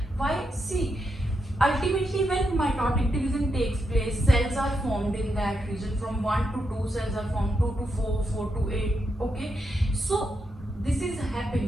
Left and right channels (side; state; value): both; normal; correlation 0.83